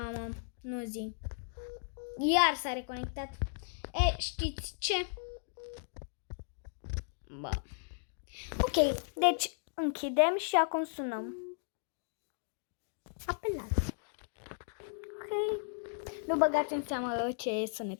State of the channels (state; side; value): silent; right; digital silence